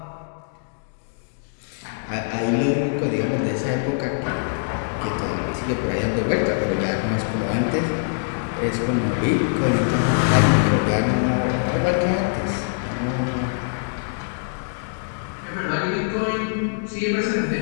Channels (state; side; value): silent; right; digital silence